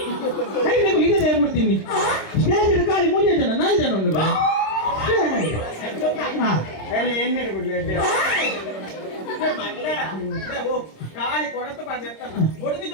ರೈಲ್ ಈಗ ತಯಾರು ಮಾಡ್ತೀನಿ ಸ್ಟೇಜ್ ಖಾಲಿ 3 ಜನ 4 ಜನ ಉಂಟು ಎಣ್ಣೆ ಬಿಡ್ಲಿ ಕಾಲಿ ಕೊಡತ ಹೊಡೆದಿ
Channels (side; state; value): right; late; 26 ms